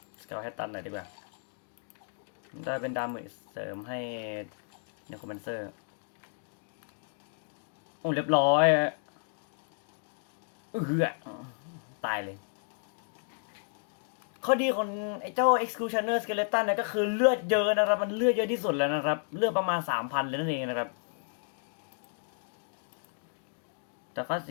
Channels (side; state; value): right; silent; digital silence